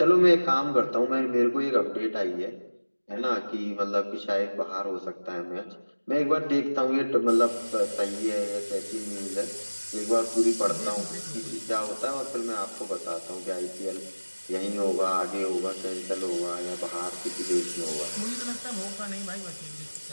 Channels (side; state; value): both; inverted; correlation -1.00